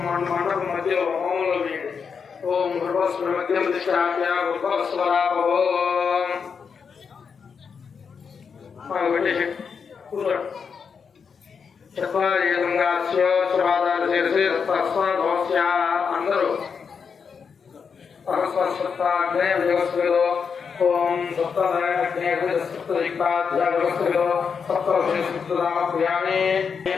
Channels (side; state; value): right; quieter; 6.1 dB